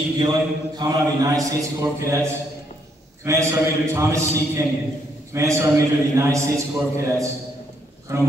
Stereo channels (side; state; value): both; normal; correlation 0.72